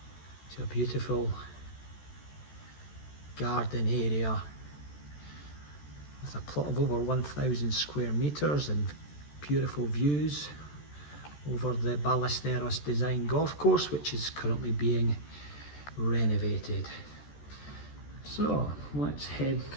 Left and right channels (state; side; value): late; right; 14 ms